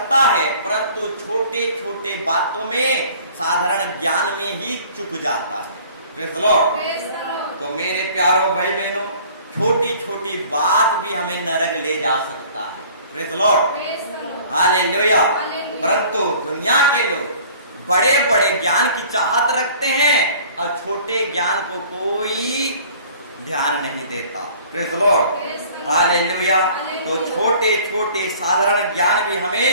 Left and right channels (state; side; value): inverted; both; correlation -0.50